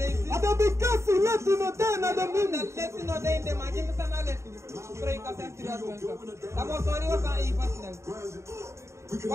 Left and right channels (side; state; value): left; late; 0.14 ms